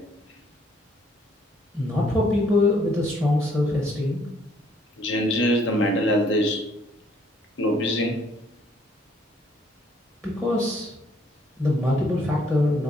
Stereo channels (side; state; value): both; normal; correlation 0.65